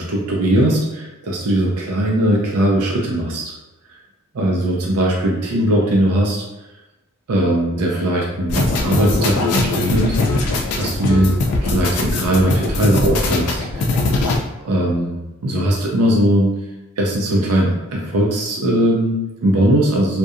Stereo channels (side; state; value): both; normal; correlation 0.61